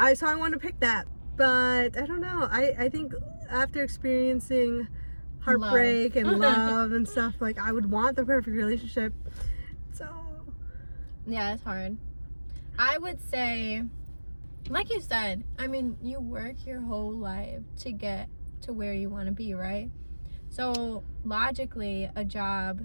want to pick that. But I don't know. I think after experiencing heartbreak and love and stuff, like I would want the perfect relationship. So yeah, it's hard. I would say, like you said, I mean, you work your whole life to get to where you want to be, right? So logically, a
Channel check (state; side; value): inverted; both; correlation -1.00